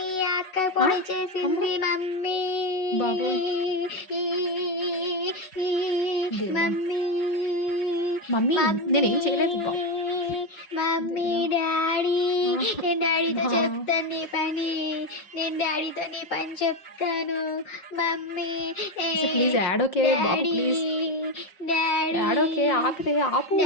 అక్క పొడి చేసింది. మమ్మీ బాబోయ్. మమ్మీ మమ్మీ నేనేం చేయలేదు బాబు. మమ్మీ డాడీ, నేను డాడీతో చెప్తాను నీ పని. నేను డాడీతో నీ పని చెప్తాను. Mummy please add okay Babu, please daddy add okay. ఆపితే ఆపు.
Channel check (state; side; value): late; right; 5.4 ms